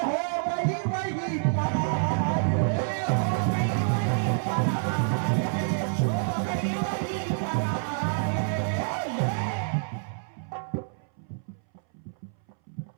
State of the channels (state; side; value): silent; left; 59 dB below the other